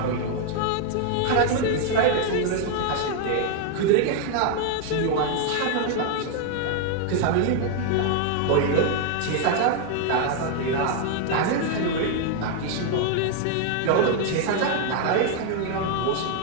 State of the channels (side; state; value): both; different; correlation 0.00